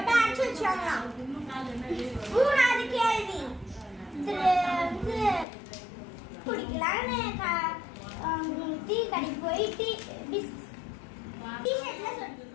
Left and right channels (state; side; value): drops out; right; at 5.5 s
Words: அடைச்சு வச்சாங்களாம். மூணாவது கேள்வி. குடிக்கலான்னு டீ கடைக்கு போய் டீ-ஷர்ட்ல